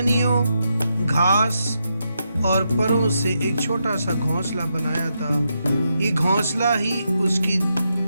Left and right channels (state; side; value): inverted; both; correlation -0.83